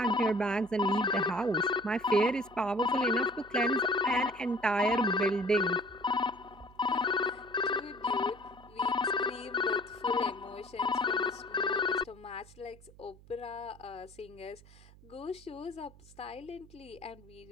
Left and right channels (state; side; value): noise; right; hum, 23 dB below the sound